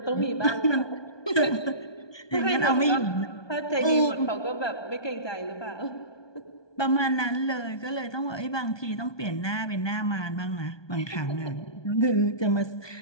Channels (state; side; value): late; right; 1.2 ms